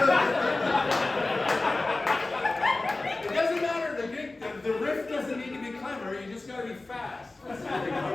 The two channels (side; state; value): right; quieter; 3.1 dB